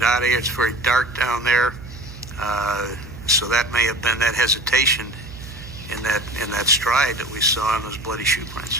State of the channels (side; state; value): right; noise; hum, 14 dB below the sound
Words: out of here, it's very dark down there. So that may have been that hesitation in that stride that we saw in those bloody shoe